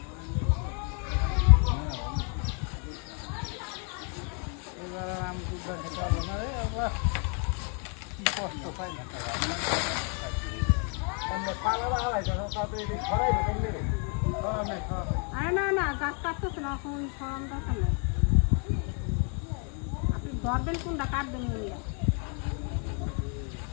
এবার আমি দুধ খেতে হবে না রে আবার কি কষ্ট পাই না আমরা পালা হারাই যখন তাতে ছড়াই কেমনে রে আরে না গাছ কাটতেছে না এখন সরম দরকার নেই আপনি ধরবেন কোনটা কাটবেন ওইয়া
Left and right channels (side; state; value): right; quieter; 39.8 dB